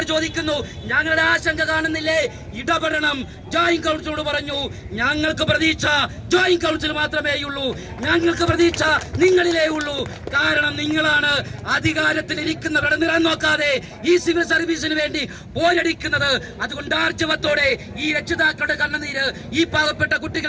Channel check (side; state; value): both; identical; correlation 1.00